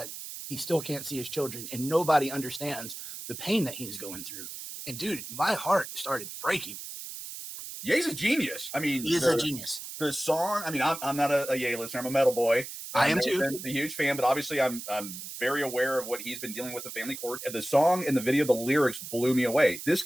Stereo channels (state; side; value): noise; right; hiss, 10 dB below the sound